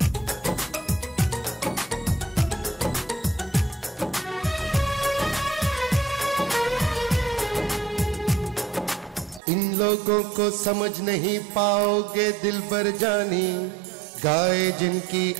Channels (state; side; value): drops out; left; at 9.4 s